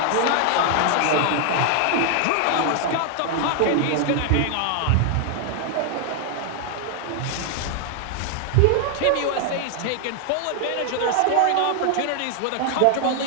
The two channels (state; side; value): different; both; correlation 0.00